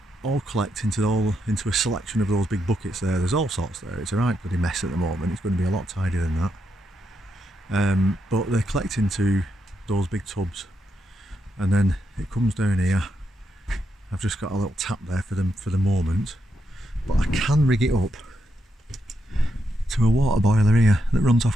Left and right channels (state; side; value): normal; both; correlation 0.82